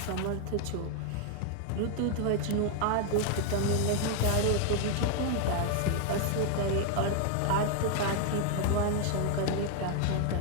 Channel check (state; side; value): different; both; correlation 0.00